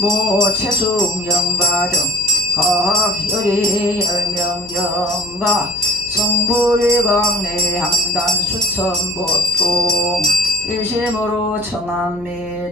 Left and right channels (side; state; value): left; noise; hum, 20 dB below the sound